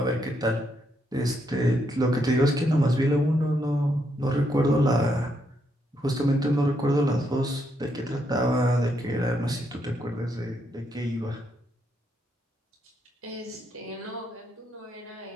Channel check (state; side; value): normal; both; correlation 0.77